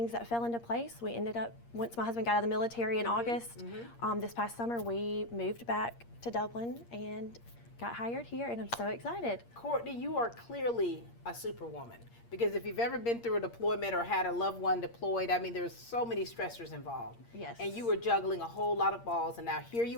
that fell into place, we ended up, once my husband got out of the military in August, this past summer, we moved back to Dublin and got hired here, and I'm so excited. Courtney, you are clearly a superwoman, because if you've ever been through a deployment or had a loved one deployed, I mean, there's so many stressors involved. Yes. And you were juggling a whole lot of balls, and now here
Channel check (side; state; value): right; late; 8.6 ms